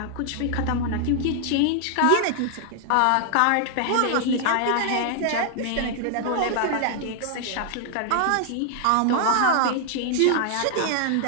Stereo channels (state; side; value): different; both; correlation 0.00